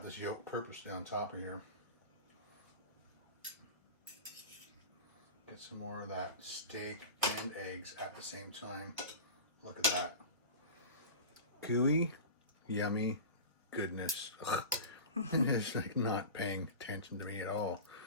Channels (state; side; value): inverted; both; correlation -0.30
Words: this yolk purposely on top of here. Get some more of that steak and eggs at the same time. Look at that. Gooey, yummy goodness. It's like not paying attention to me at all.